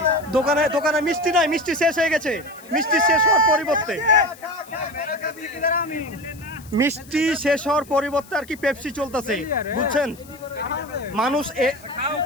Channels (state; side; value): noise; left; hiss, 23 dB below the sound